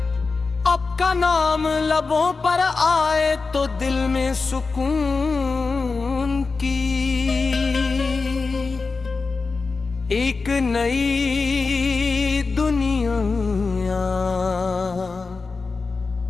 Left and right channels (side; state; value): right; quieter; 4.2 dB